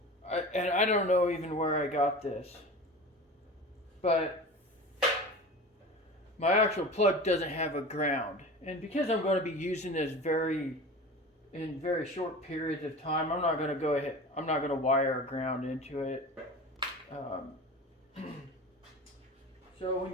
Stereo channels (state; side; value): normal; both; correlation 0.34